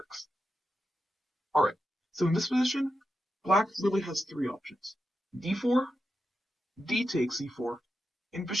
Alright, so in this position, black really has three options. d4, d takes e4, and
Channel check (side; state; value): both; normal; correlation 0.88